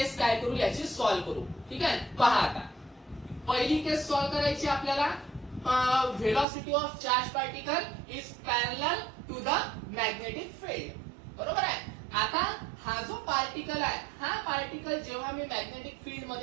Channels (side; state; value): left; drops out; at 6.5 s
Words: काय करू याची सॉल्व्ह करू. ठीक आहे. पहा आता पहिली केस सॉल्व्ह करायची आपल्याला. velocity of charge particle is parallel to the magnetic field. बरोबर आहे. आता हा जो पार्टिकल आहे हा पार्टिकल जेव्हा मी मॅग्नेटिक फील्ड